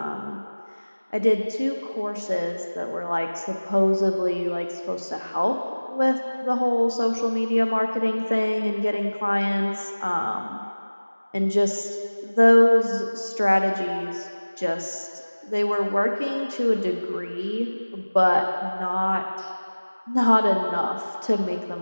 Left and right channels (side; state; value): both; inverted; correlation -1.00